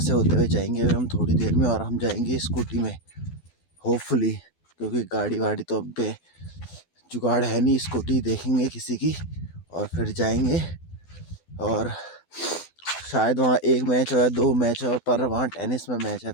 होते हुए जाएंगे हम थोड़ी देर में, और हम जाएंगे स्कूटी में होपफुली, क्योंकि गाड़ी वाड़ी तो अब पे जुगाड़ है नहीं। स्कूटी देखेंगे किसी की और फिर जाएंगे। और शायद वहाँ एक मैच हो या दो मैच हो, पर वहाँ टेनिस में मैच है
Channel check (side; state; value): right; late; 12 ms